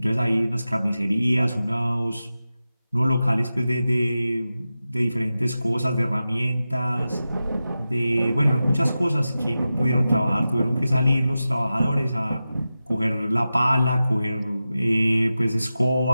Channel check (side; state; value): both; inverted; correlation -0.93